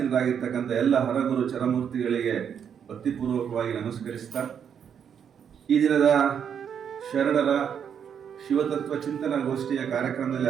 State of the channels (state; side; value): quieter; left; 7.9 dB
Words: ಎಲ್ಲ ಹರಗುರು ಚರಮೂರ್ತಿಗಳಿಗೆ ಭಕ್ತಿಪೂರ್ವಕವಾಗಿ ನಮಸ್ಕರಿಸ್ತಾ ಈ ದಿನದ ಶರಣರ ಶಿವತತ್ವ ಚಿಂತನಾ ಗೋಷ್ಠಿಯ